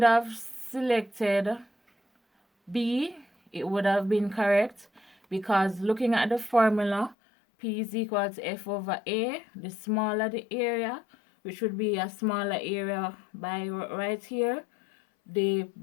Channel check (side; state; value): right; drops out; at 7.2 s